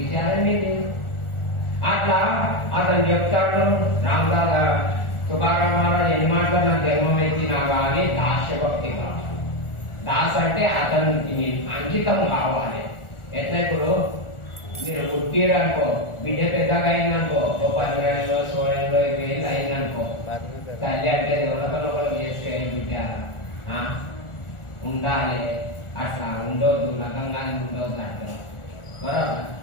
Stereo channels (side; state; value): right; late; 1.4 ms